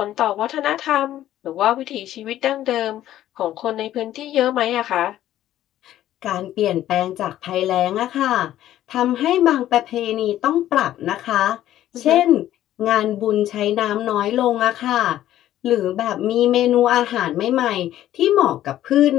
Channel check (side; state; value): right; quieter; 12.9 dB